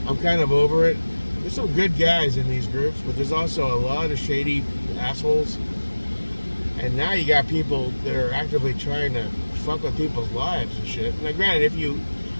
I'm kind of over it. There's some good guys in these groups, but there's also a lot of shady assholes. And now you got people that are actively trying to fuck with people's lives and shit. Now, granted, if you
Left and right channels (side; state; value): both; inverted; correlation -1.00